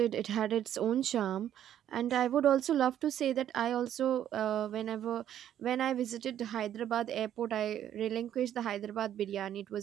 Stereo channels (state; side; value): quieter; left; 10.8 dB